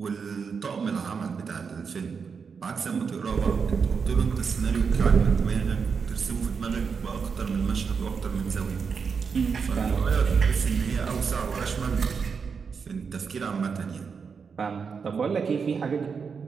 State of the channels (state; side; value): quieter; left; 5.8 dB